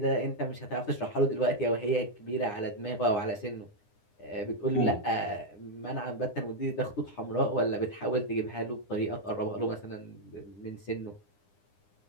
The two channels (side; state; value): right; late; 9.8 ms